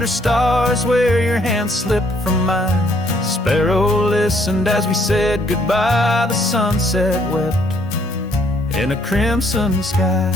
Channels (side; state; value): both; normal; correlation 0.66